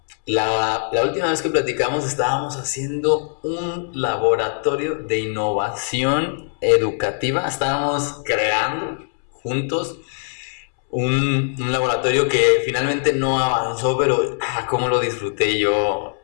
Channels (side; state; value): right; silent; 65 dB below the other